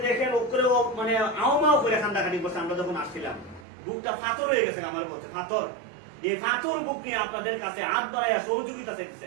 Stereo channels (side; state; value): left; drops out; at 3.7 s